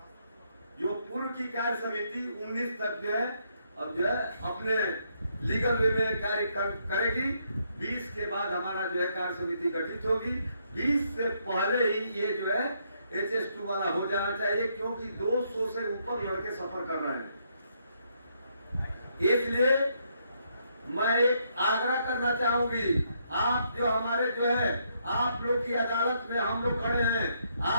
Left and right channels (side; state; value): both; inverted; correlation -0.74